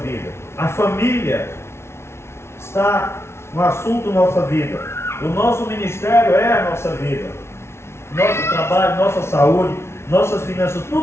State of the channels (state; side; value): late; right; 0.13 ms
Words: A família está no assunto da nossa vida. O nosso ministério é a nossa vida. Nosso trabalho, nossa saúde, nossas finanças,